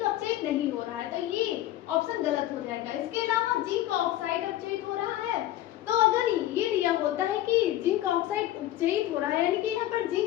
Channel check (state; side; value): quieter; right; 14.0 dB